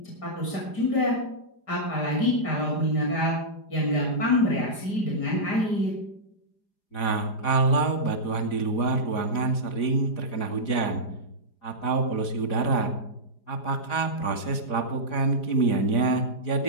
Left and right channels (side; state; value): right; late; 4.9 ms